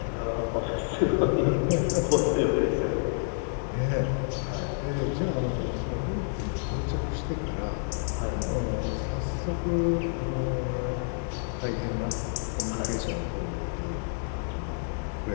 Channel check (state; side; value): silent; right; digital silence